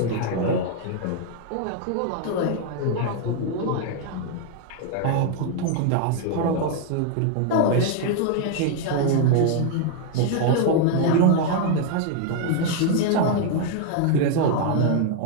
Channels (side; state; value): both; different; correlation 0.00